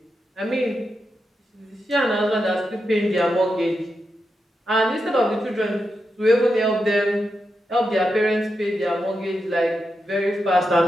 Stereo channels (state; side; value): normal; both; correlation 0.87